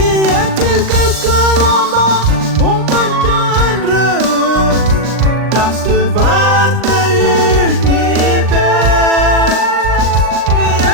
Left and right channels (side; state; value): left; late; 39 ms